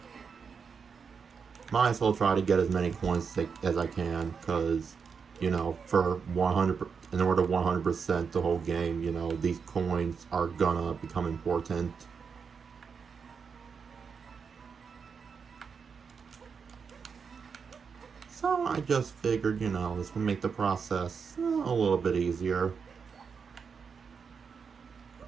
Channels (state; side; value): quieter; left; 6.0 dB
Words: Might as well try to get as many coins as I can, because, you know, for 100, in order to 100% the whole game, you know, these coins are gonna become important. So I just figured, you know, this would make the process a little bit easier.